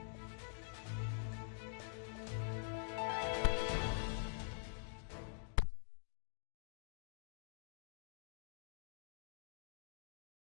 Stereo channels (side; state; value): right; silent; digital silence